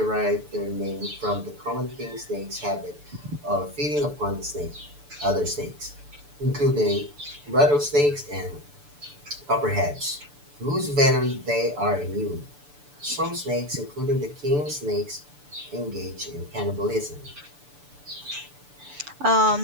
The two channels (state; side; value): late; left; 6.9 ms